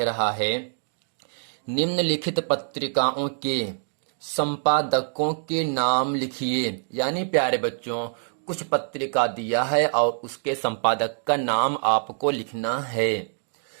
रहा है, निम्नलिखित पत्रिकाओं के संपादकों के नाम लिखिए। यानी प्यारे बच्चों, कुछ पत्रिका दिया है और उसके संपादक का नाम आपको लिखना है।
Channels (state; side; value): silent; left; digital silence